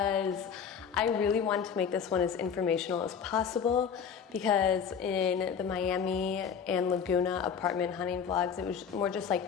I really wanted to make this one as informational as possible, because in the Miami and Laguna apartment hunting vlogs, it was more just like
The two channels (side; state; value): right; quieter; 7.2 dB